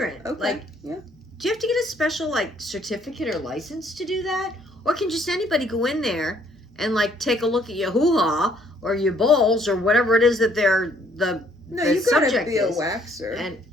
Okay. like, yeah. do you have to get a special, like, certificate or license to do that? Or can just anybody go in there and, like, take a look at your hoo-ha or your balls or whatever it is that they're the No, the you gotta subject be a is. waxer. And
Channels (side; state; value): both; normal; correlation 0.64